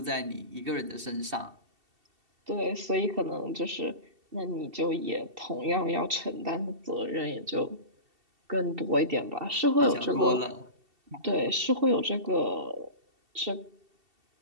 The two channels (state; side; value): late; left; 2.7 ms